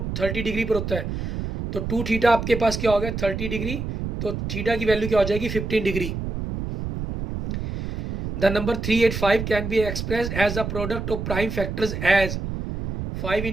30 डिग्री पर होता है। तो 2 थीटा आपके पास क्या हो गया 30 डिग्री, तो थीटा की वैल्यू क्या हो जाएगी 15 degree. The number 385 can be express as the product of prime factors as 5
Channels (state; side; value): noise; right; rumble, 5 dB below the sound